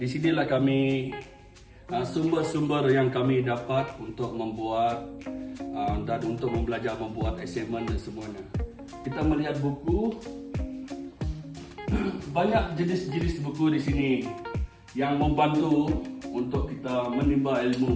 sinilah kami sumber-sumber yang kami dapat untuk membuat dan untuk belajar membuat assignment dan semuanya. Kita melihat buku, banyak jenis-jenis buku di sini yang membantu untuk kita menimba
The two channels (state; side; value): identical; both; correlation 1.00